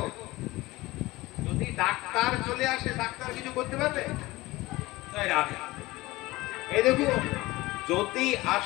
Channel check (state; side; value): quieter; right; 19.8 dB